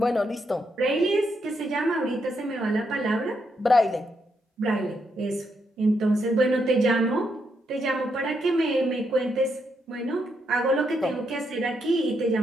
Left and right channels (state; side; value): normal; both; correlation 0.79